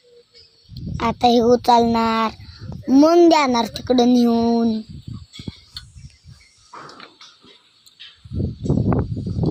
आता हे उचलणार मग देणार तिकडं नेऊन.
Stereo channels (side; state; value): both; identical; correlation 1.00